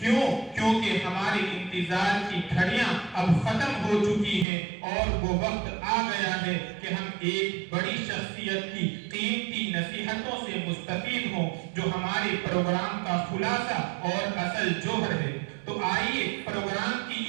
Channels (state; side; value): drops out; left; at 4.5 s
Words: کیوں؟ کیونکہ ہمارے انتظار کی گھڑیاں اب ختم ہو چکی ہیں اور وہ وقت آ گیا ہے کہ ہم ایک بڑی شخصیت کی قیمتی نصیحتوں سے مستفید ہوں جو ہمارے پروگرام کا خلاصہ اور اصل جوہر ہے. تو آئیے پروگرام کی